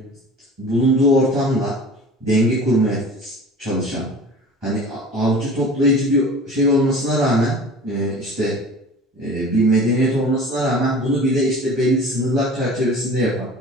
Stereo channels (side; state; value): both; normal; correlation 0.41